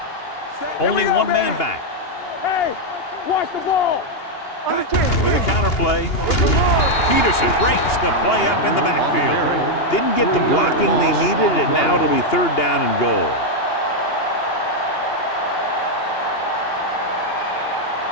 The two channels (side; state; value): right; late; 2.8 ms